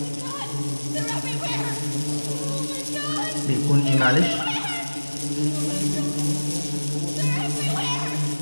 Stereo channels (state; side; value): inverted; both; correlation -1.00